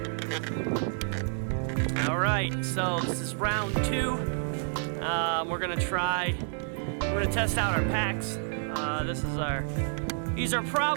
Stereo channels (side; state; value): left; silent; digital silence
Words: Alright, so this is round 2. We're gonna test out our packs. These are